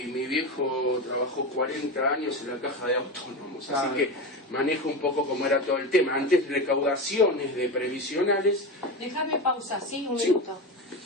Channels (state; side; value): normal; both; correlation 0.21